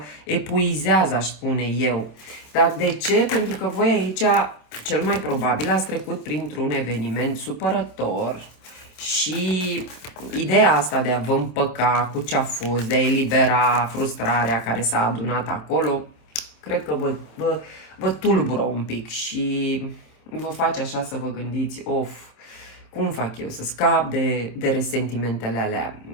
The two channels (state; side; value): late; right; 27 ms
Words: epuizează, aș spune eu. Dar de ce? Pentru că voi aici, cel mai probabil, ați trecut printr-un eveniment supărător și ideea asta de a vă împăca cu ce a fost, de a elibera frustrarea care s-a adunat acolo, cred că vă tulbură un pic și vă face așa să vă gândiți, cum fac eu să scap de resentimentele alea?